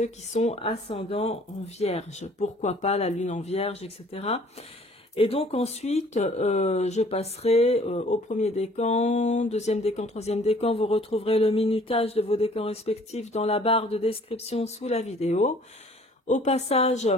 qui sont ascendants en Vierge. Pourquoi pas la Lune en Vierge, etc. Et donc ensuite, je passerai au premier décan, deuxième décan, troisième décan. Vous retrouverez le minutage de vos décans respectifs dans la barre de description sous la vidéo. Au passage,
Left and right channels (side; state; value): both; normal; correlation 0.55